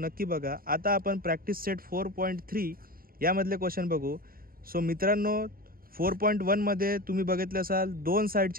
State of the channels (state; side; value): late; left; 0.42 ms